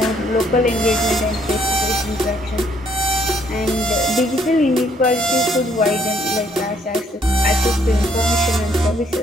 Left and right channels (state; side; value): normal; both; correlation 0.67